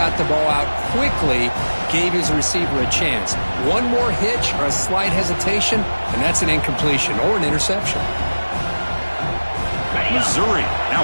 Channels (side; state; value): both; inverted; correlation -1.00